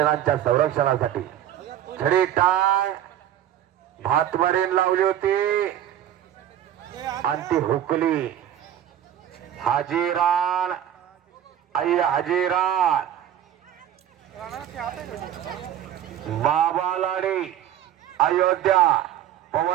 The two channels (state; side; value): quieter; left; 10.9 dB